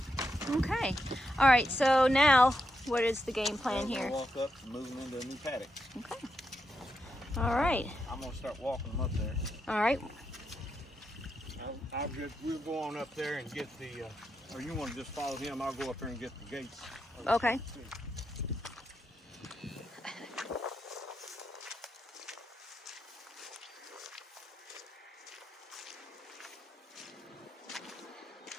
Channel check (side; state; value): both; normal; correlation 0.84